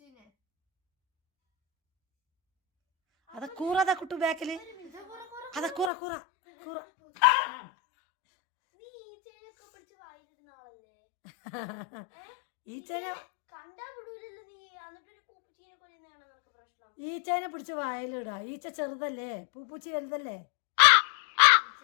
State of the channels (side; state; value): right; drops out; at 5.9 s